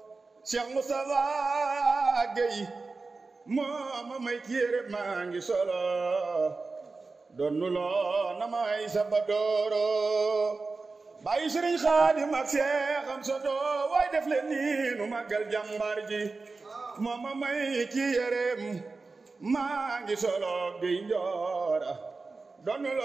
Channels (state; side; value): quieter; left; 3.9 dB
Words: Cheikh Moustapha Gueye moo ma may kiyére maa ngi solo doon nu loo na may sabadooro bàyyi Sëriñ Xaadim ak Seexam Soto waay def leen nii nu màggal jàmbaar ji moo ma may kiyére maa ngi solo Gueye Njoora doon nu